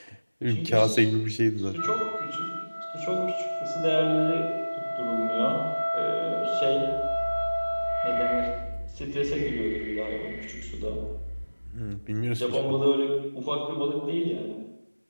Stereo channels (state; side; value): inverted; both; correlation -1.00